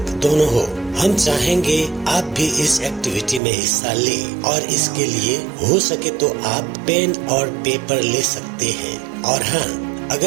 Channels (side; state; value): left; drops out; at 3.4 s